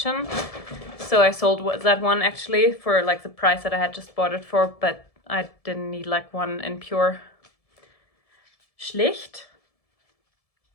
So I sold that one actually for like the price that I had just bought it for, but I didn't need like one in Pure. Schlicht,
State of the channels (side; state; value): right; late; 1.7 ms